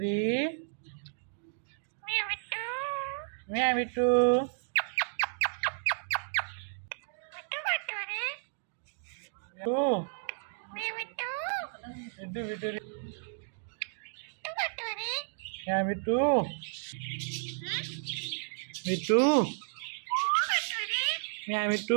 म्या मिठू तू मिठू बिटुरी म्या मिठू मिठू म्या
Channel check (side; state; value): left; silent; digital silence